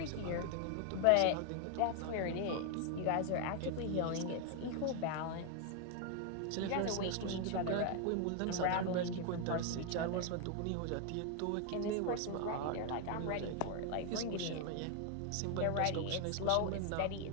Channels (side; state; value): both; different; correlation 0.00